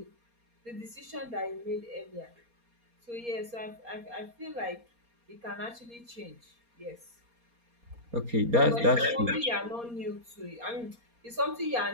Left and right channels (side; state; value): left; late; 4.2 ms